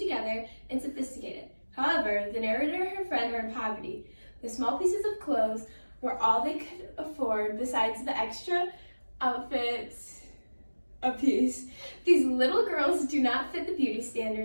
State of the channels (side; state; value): both; inverted; correlation -1.00